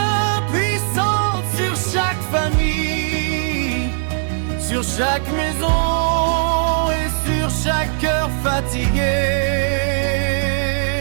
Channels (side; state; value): left; silent; digital silence